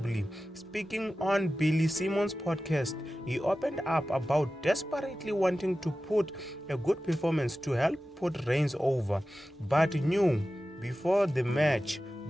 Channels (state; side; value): normal; both; correlation 0.94